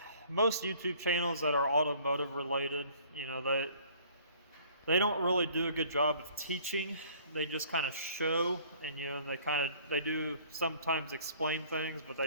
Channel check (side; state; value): both; inverted; correlation -0.55